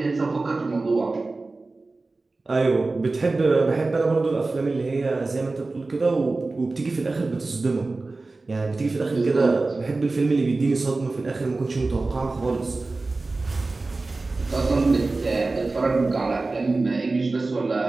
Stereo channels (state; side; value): quieter; left; 3.5 dB